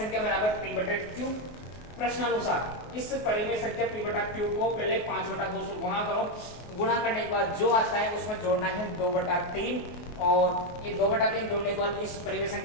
बराबर p/q। प्रश्नानुसार इस परिमेय संख्या p/q को पहले 5/2 से गुणा करो। गुणा करने के बाद जो आता है उसमें जोड़ना है 2/3, और ये 2/3 जोड़ने के बाद इस परिमेय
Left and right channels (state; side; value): late; right; 24 ms